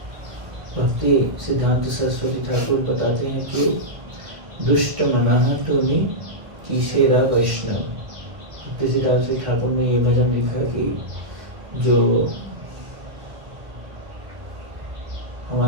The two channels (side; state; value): left; late; 1.8 ms